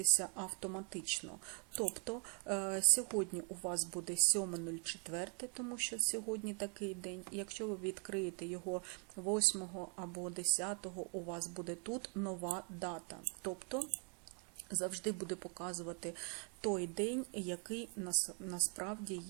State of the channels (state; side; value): quieter; left; 38.0 dB